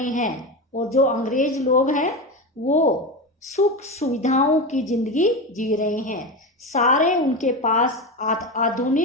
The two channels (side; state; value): both; normal; correlation 0.20